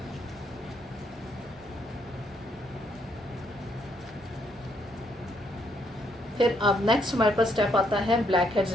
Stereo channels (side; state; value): both; normal; correlation 0.73